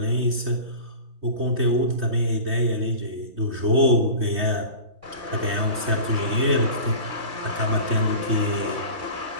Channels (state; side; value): late; left; 3.2 ms